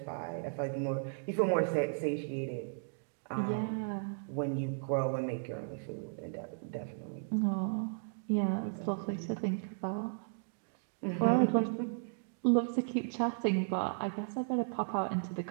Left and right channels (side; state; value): left; silent; digital silence